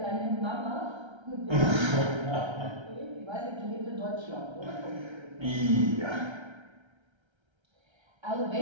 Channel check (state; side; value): late; left; 1.3 ms